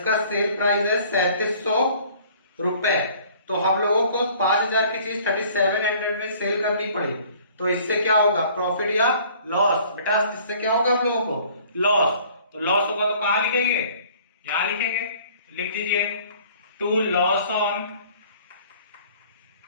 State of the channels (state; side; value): inverted; both; correlation -0.54